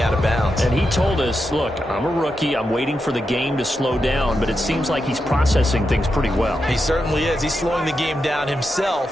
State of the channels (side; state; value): both; normal; correlation 0.87